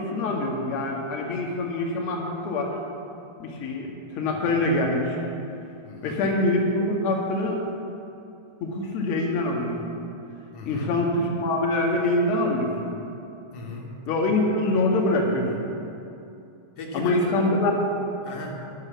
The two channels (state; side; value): late; left; 1.1 ms